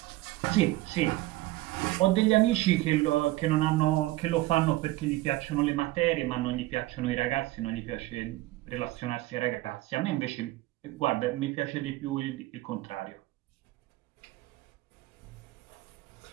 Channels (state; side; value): quieter; left; 18.4 dB